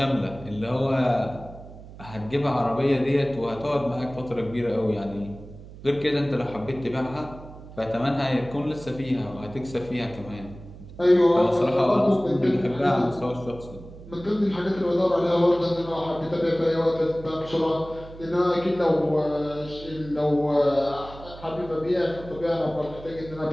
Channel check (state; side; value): noise; right; hum, 16 dB below the sound